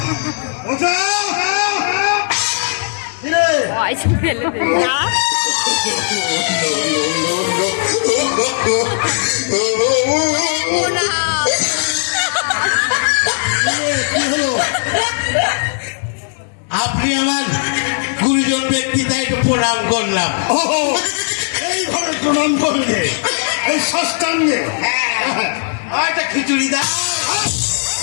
Pode, beleza. Tá? আপনি আমার গুরুজন ব্যক্তি, তাই একটু প্রণাম করলাম। এইভাবে প্রণাম করলে এই ষষ্ঠাঙ্গে? একটা খিচুড়ি দাও।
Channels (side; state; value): right; silent; digital silence